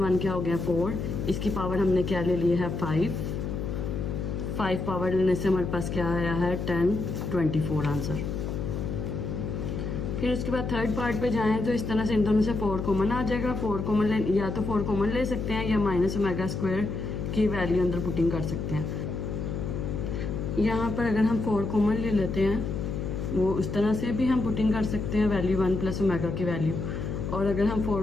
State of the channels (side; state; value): left; noise; hum, 4 dB below the sound